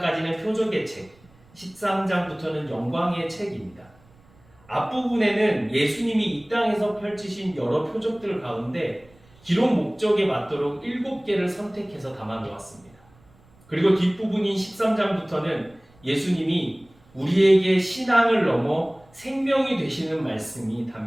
표적의 책, 13장부터는 영광의 책입니다. 앞부분에는 예수님이 이 땅에서 펼치신 여러 표적들 가운데 기록 목적에 맞도록 7개를 선택해서 담아 놓았습니다. 그리고 뒷부분인 13장부터는 예수님이 우리에게 신앙을 넘어 생명이 되시는 말씀이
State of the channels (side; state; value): right; noise; rumble, 29 dB below the sound